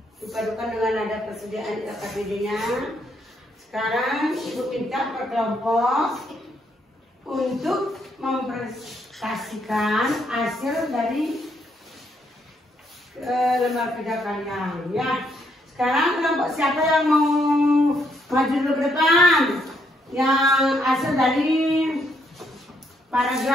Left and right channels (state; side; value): normal; both; correlation 0.74